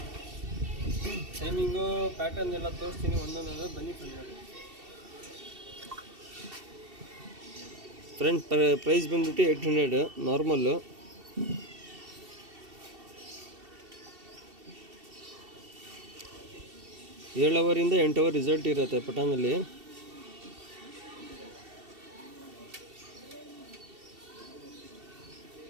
ಟೈಮಿಂಗು ಪ್ಯಾಟರ್ನ್ ಎಲ್ಲ ತೋರಿಸ್ತೀನಿ ಒಂದೊಂದು. ಬನ್ನಿ ನೋಡಿ ಫ್ರೆಂಡ್. ಪ್ರೈಸ್ ಬಂದ್ಬಿಟ್ಟು 800 ನಾರ್ಮಲ್ಲು. ಏಳು ಅವರಿಂದ 8 ಅವರ್ ರಿಸಲ್ಟ್ ಇರುತ್ತೆ ಪಟಾನಲ್ಲಿ.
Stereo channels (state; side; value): late; left; 2.7 ms